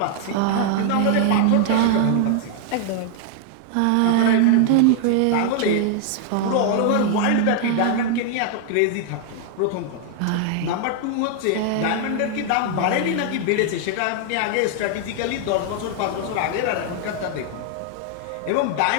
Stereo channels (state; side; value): different; both; correlation 0.00